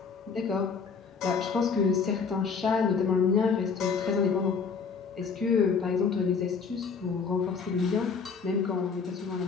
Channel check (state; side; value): quieter; right; 5.5 dB